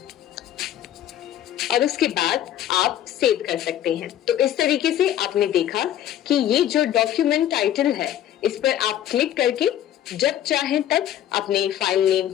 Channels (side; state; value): right; quieter; 11.5 dB